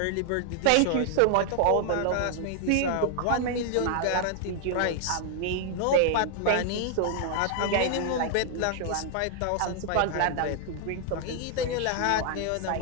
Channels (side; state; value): both; different; correlation 0.00